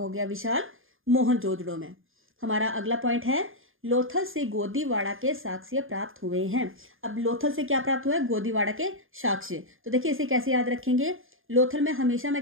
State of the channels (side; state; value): left; late; 0.59 ms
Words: गया, विशाल मोहनजोदड़ो में। हमारा अगला पॉइंट है लोथल से गोदीवाड़ा के साक्ष्य प्राप्त हुए हैं। अब लोथल से क्या प्राप्त हुआ है, गोदीवाड़ा के साक्ष्य। तो देखिए इसे कैसे याद रखेंगे, लोथल में हमेशा मैं